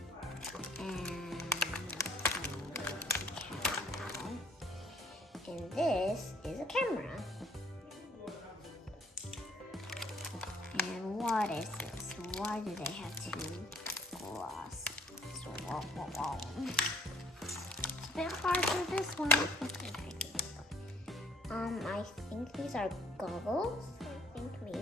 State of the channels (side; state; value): both; normal; correlation 0.60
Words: And this is a camera. And what is this? Why do they have two glass? So, it's a bit hard for this one. I think these are goggles. I think